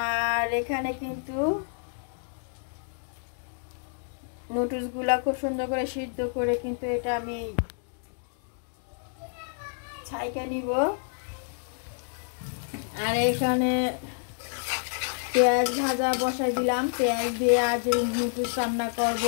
এখানে কিন্তু নুডলসগুলা খুব সুন্দর করে সিদ্ধ করে কিন্তু এটা আমি ছাইকা নিব। আর এখানে পেঁয়াজ ভাজা বসাই দিলাম। পেঁয়াজ দিয়ে আজ নুডলস রান্না করব,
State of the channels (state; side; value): silent; right; digital silence